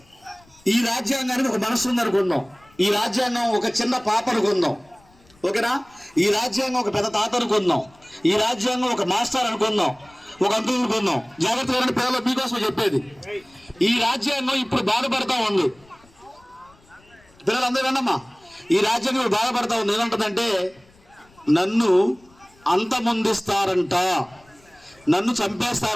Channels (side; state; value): left; noise; rumble, 30 dB below the sound